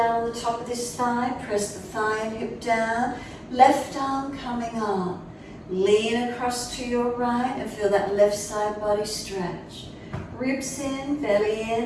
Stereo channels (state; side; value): identical; both; correlation 1.00